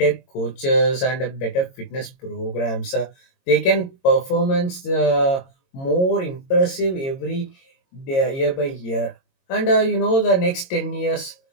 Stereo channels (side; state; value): right; late; 22 ms